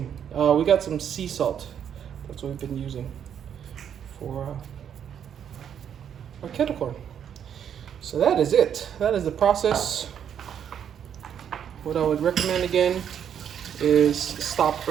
We got some sea salt. That's what we've been using for our kettle corn. So that is it. That is the process. What I would recommend again is stop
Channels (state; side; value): quieter; left; 8.7 dB